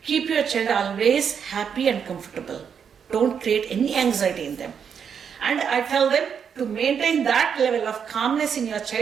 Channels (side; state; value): left; quieter; 7.2 dB